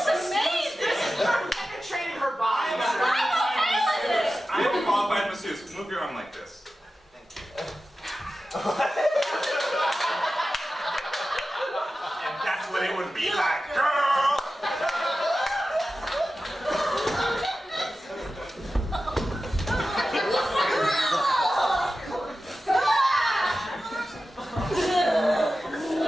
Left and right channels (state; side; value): normal; both; correlation 0.94